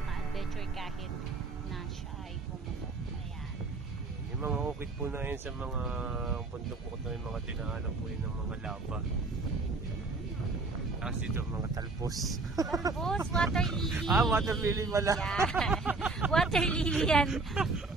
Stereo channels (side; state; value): left; quieter; 3.7 dB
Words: kahit na siya ay pumutok. Ayan. Yung mga ukit po na yun sa mga bundok po ito, yung mga dinaanan po yun ng mga lava. Tapos dito mga talpos. Talpos, water lily. Water lily pala. Yan. Water lily yan.